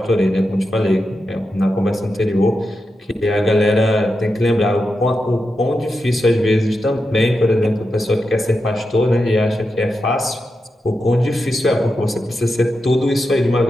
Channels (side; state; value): both; normal; correlation 0.88